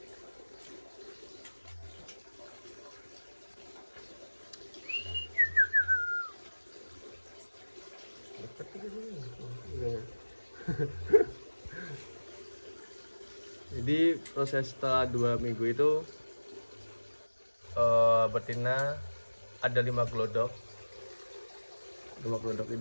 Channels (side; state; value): both; inverted; correlation -1.00